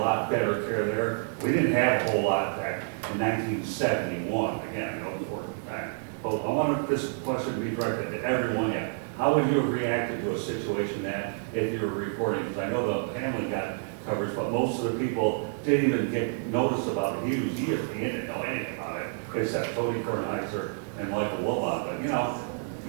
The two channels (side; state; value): left; silent; 59 dB below the other